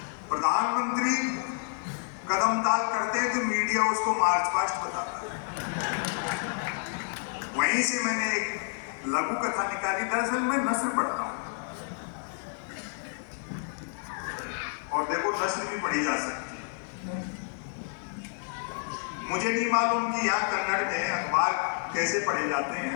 प्रधानमंत्री कदम ताल करते हैं तो मीडिया उसको मार्च पास्ट बताता है। वहीं से मैंने एक लघु कथा निकाली। दरअसल मैं नस्र पढ़ता हूं, और देखो नस्र भी पढ़ी जा सकती है। मुझे नहीं मालूम कि यहाँ कन्नड़ में अखबार कैसे पढ़े जाते हैं।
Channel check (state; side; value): silent; right; 58 dB below the other